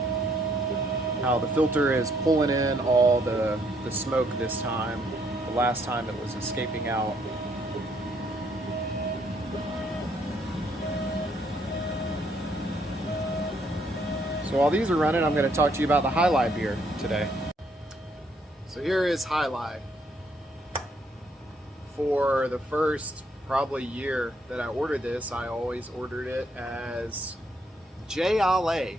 how the filter is pulling in all the smoke this time. The last time it was escaping out. So while these are running, I'm going to talk to you about the Hi-Lai beer today. So here is Hi-Lai. For the first probably year that I ordered this, I always ordered it as Jai Alai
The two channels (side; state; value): both; normal; correlation 0.70